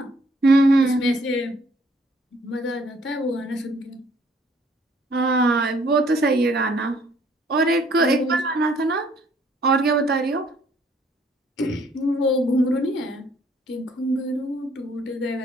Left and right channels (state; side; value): normal; both; correlation 0.63